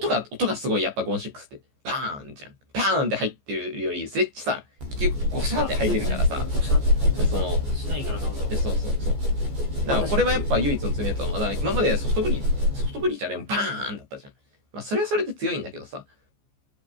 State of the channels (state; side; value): late; left; 14 ms